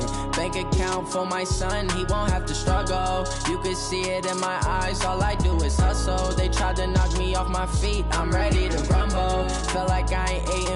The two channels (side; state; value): both; identical; correlation 1.00